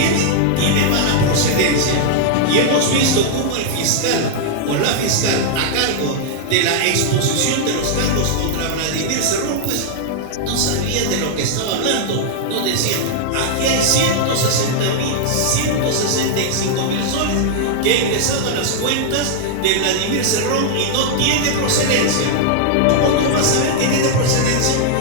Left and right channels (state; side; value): different; both; correlation 0.00